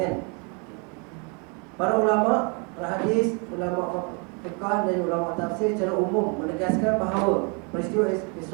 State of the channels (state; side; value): quieter; left; 34.5 dB